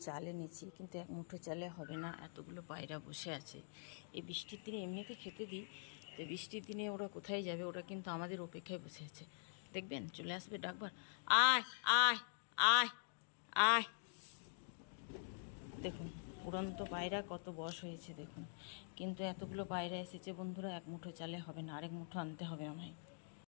চাল এনেছি, কিন্তু এক মুঠো চালে হবে না, এতগুলো পায়রা বসে আছে। এই বৃষ্টির দিনে এমনিতে খেতে দিই, তো বৃষ্টির দিনে ওরা কোথায় যাবে? ওরা কিন্তু আমাদের অপেক্ষায় বসে আছে। দেখবেন চলে আসবে ডাকবার, আয় আয় আয় আয়। দেখুন উড়ন্ত পায়রা কত বয়স হয়েছে দেখুন, কিন্তু এতগুলো পায়রা এসেছে বন্ধুরা, এক মুঠো চালে হবে না, আরেক মুঠো আনতে হবে আমায়।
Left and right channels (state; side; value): silent; right; digital silence